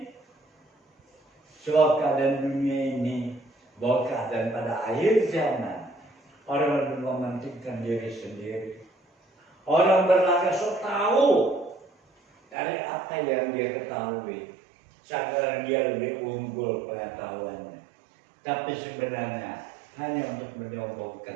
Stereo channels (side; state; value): left; drops out; at 12.6 s